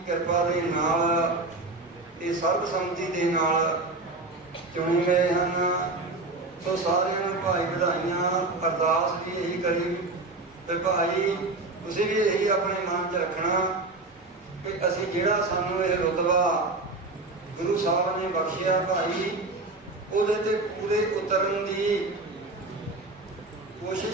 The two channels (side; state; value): left; quieter; 3.2 dB